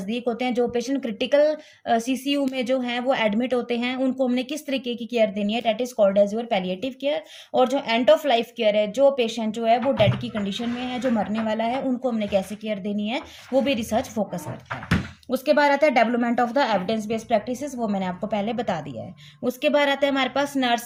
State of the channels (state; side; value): identical; both; correlation 1.00